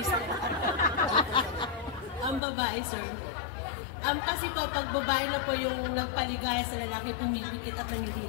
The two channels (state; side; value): drops out; right; at 2.4 s